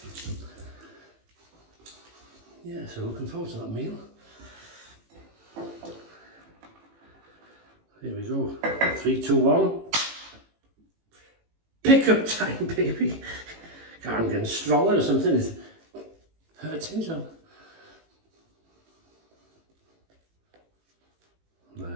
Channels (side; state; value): left; late; 18 ms